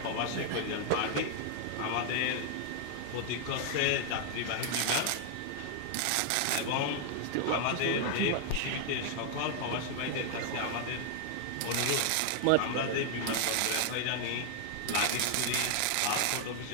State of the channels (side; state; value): both; different; correlation 0.00